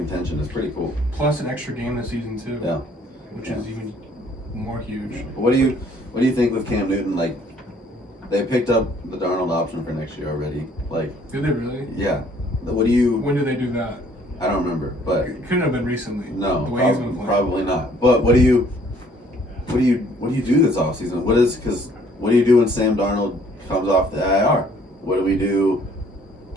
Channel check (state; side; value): normal; both; correlation 0.60